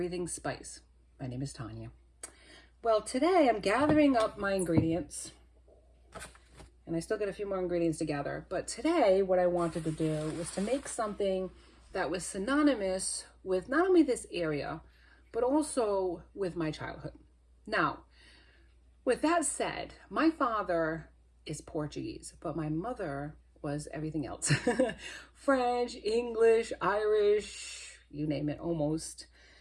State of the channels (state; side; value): identical; both; correlation 1.00